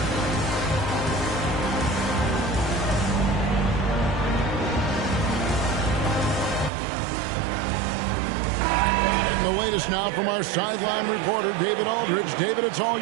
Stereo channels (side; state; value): left; drops out; at 6.7 s